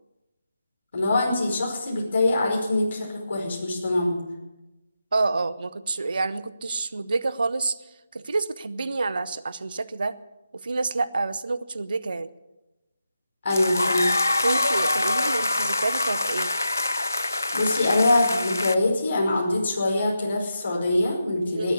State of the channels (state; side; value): inverted; both; correlation -0.87